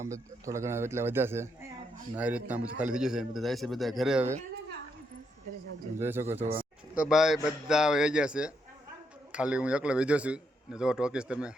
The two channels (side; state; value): both; normal; correlation 0.78